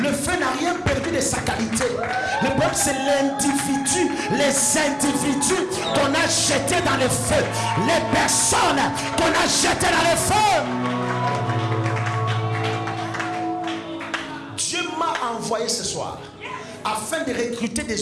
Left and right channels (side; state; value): both; identical; correlation 1.00